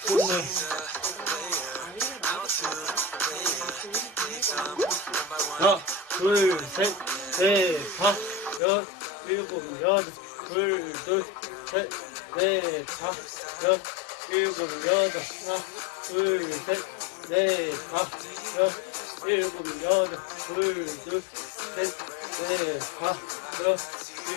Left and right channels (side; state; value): right; drops out; at 8.6 s